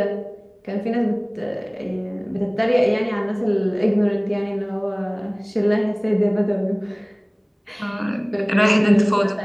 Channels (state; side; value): identical; both; correlation 1.00